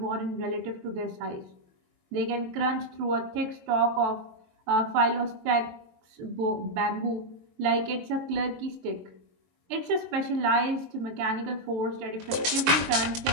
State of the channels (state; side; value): late; left; 22 ms